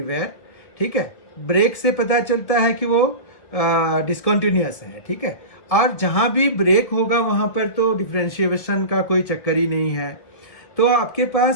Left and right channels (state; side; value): late; right; 2.2 ms